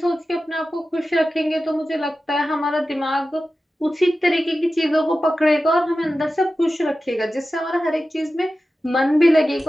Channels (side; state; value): both; normal; correlation 0.94